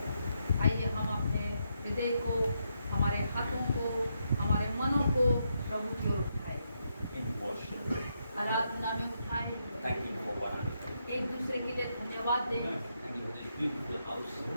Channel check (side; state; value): both; inverted; correlation -0.81